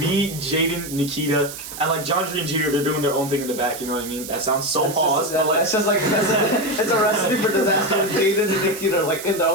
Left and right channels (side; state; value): right; noise; hiss, 11 dB below the sound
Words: Jaden, Nikita, and like John Tree and Jeter. They're doing their own thing in the back. You know what I mean? That sounds so pause. It's just like it's a recipe for disaster. Jaden and Nikita are like in their